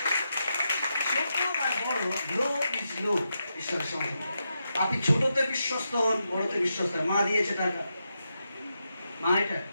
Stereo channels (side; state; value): both; inverted; correlation -0.86